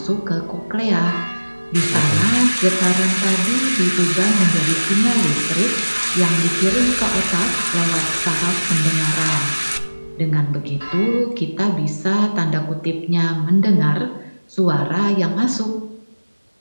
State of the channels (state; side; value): inverted; both; correlation -1.00